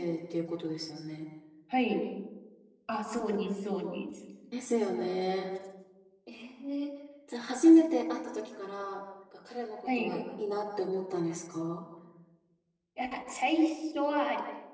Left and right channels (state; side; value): identical; both; correlation 1.00